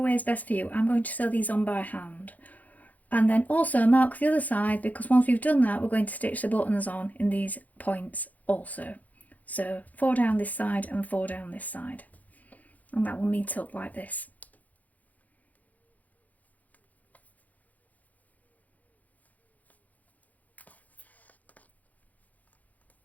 is best for you. I'm going to sew these on by hand. And then also mark the other side, because once we've done that we're going to stitch the buttons on in these points also. So 4 down this side and 4 down this side, and that will meet up like this.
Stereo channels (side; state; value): right; late; 0.078 ms